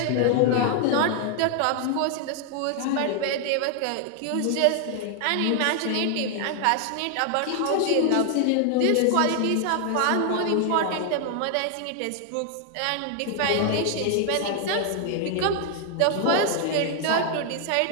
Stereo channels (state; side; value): different; both; correlation 0.00